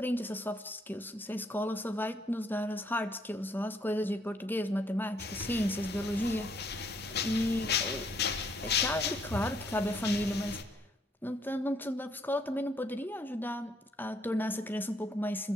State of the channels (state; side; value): normal; both; correlation 0.69